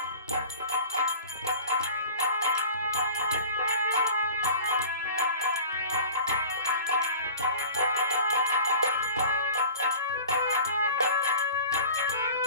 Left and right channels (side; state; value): both; inverted; correlation -0.40